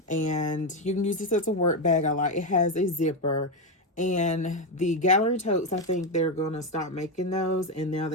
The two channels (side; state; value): both; normal; correlation 0.08